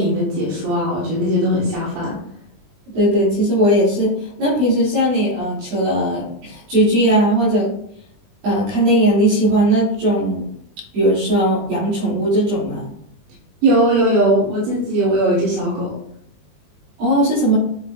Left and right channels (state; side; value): late; left; 20 ms